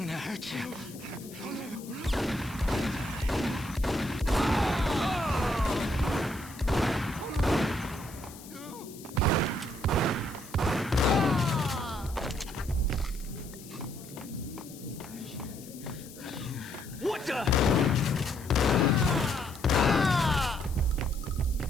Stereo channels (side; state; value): left; noise; hiss, 18 dB below the sound